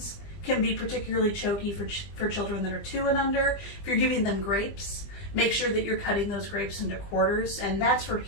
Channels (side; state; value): right; late; 20 ms